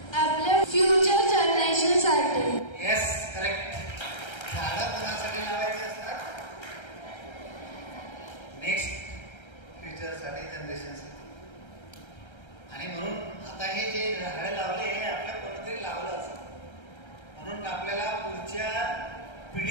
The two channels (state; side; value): late; right; 1.3 ms